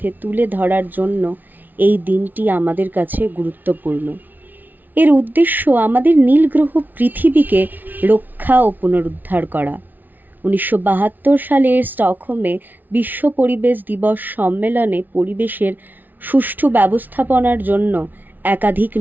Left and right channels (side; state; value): left; late; 0.084 ms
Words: তুলে ধরার জন্য এই দিনটি আমাদের কাছে গুরুত্বপূর্ণ। এর উদ্দেশ্য আমাদের নীল গ্রহ পৃথিবীকে রক্ষা ও পুনরুদ্ধার করা। 1972 সালের স্টকহোমে বিশ্ব পরিবেশ দিবস সম্মেলনে পরিবেশের সুষ্ঠু ব্যবস্থাপনার জন্য একাধিক